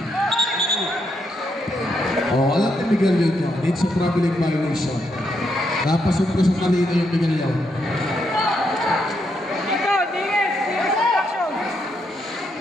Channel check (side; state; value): both; normal; correlation 0.79